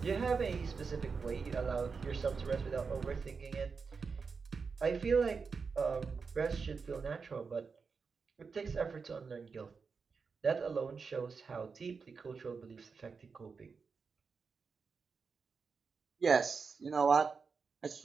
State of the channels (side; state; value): left; quieter; 5.2 dB